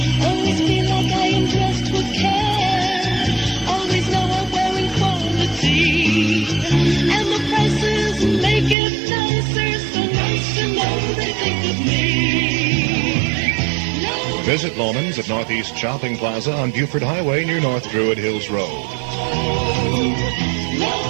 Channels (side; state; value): left; drops out; at 8.8 s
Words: Always feel like I am dressed with care. Always know I'm wearing quality. And the prices make it nicer, so nice to know they think of me. Visit Loman's at Northeast Shopping Plaza on Buford Highway near North Druid Hills Road.